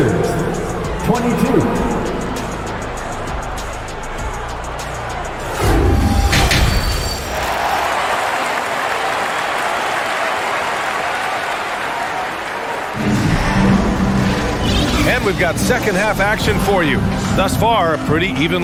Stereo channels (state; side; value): identical; both; correlation 1.00